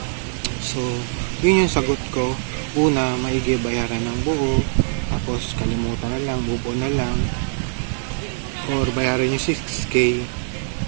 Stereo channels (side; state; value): left; silent; digital silence